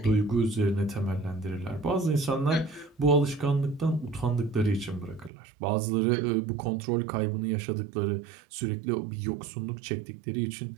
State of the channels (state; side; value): drops out; left; at 5.3 s